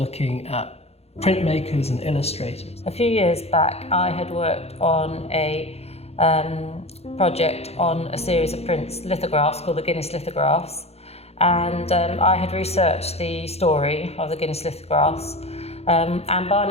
at printmakers and illustrators. A few years back, I had worked on a project on a series of prints, lithographs called the Guinness lithographs, and I had researched the story of the Guinness lithographs, and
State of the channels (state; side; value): late; right; 0.30 ms